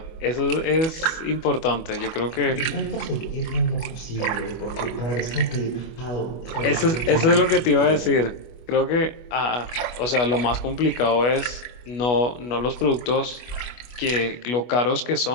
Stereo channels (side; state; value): right; late; 25 ms